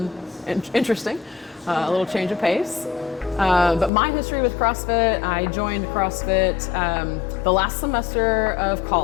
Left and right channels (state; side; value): drops out; right; at 3.9 s